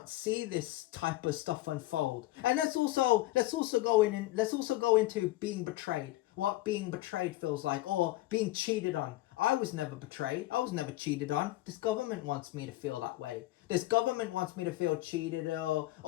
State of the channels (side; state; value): right; quieter; 17.3 dB